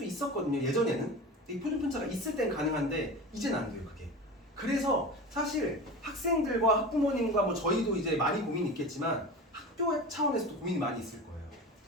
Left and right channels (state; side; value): normal; both; correlation 0.31